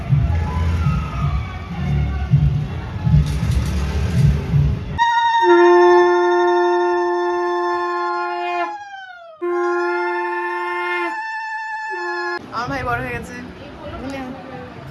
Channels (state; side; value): identical; both; correlation 1.00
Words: আমার ভাই বড় হয়ে গেছে।